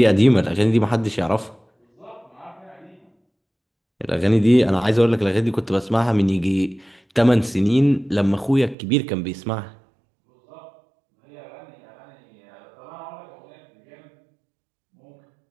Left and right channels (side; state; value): left; drops out; at 8.8 s